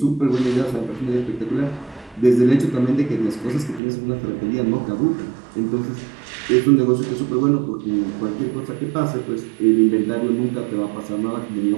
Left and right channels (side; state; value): left; drops out; at 3.8 s